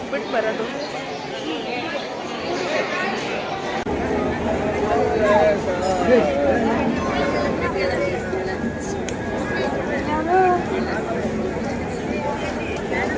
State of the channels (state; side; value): identical; both; correlation 1.00